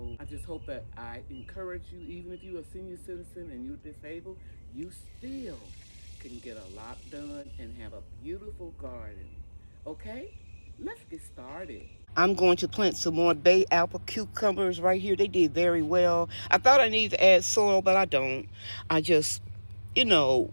I just hope that I encourage you, even if you're a senior citizen and you're disabled, you still can get a lot done and have a beautiful garden. Okay, let's get started. I'm going to plant some more bay apple cucumbers right here. They did very well. I thought I needed to add soil, but I don't. I just, you know,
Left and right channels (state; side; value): inverted; both; correlation -1.00